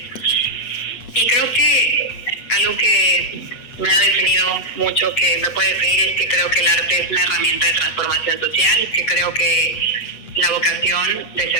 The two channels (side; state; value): right; late; 8.2 ms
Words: Y creo que algo que me ha definido mucho, que me puede definir, es que creo que el arte es una herramienta de transformación social, que creo que la vocación de